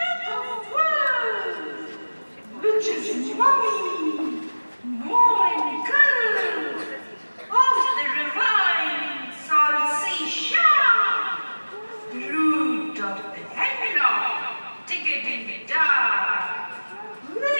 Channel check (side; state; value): both; inverted; correlation -1.00